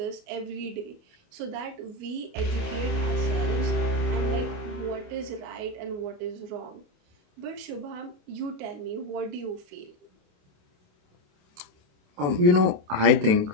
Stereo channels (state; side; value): late; left; 28 ms